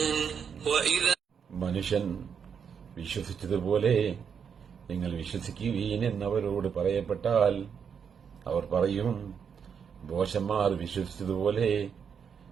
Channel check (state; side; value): quieter; left; 7.0 dB